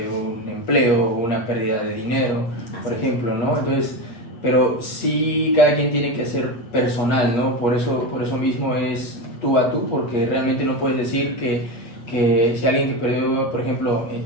un empleo o una pérdida de dinero, por ejemplo, ¿no? Entonces, pero sí cada quien tiene que ser personal, ¿no? Por eso mismo es tú a tú, porque realmente no puedes decir que si alguien que perdió, por ejemplo,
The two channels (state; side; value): late; right; 8.4 ms